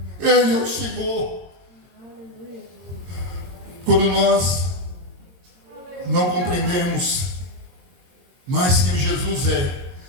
Ele é o Senhor. Quando nós não compreendemos mais quem Jesus é,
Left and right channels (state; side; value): late; left; 22 ms